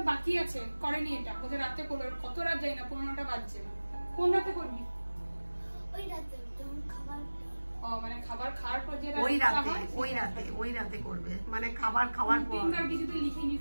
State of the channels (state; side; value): inverted; both; correlation -1.00